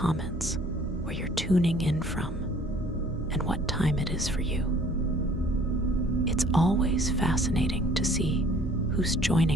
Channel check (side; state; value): both; normal; correlation 0.54